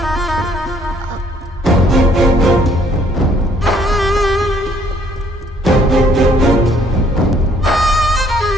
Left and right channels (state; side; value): normal; both; correlation 0.63